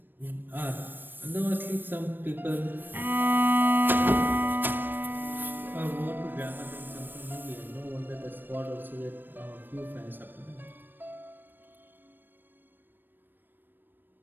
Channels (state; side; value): late; left; 0.094 ms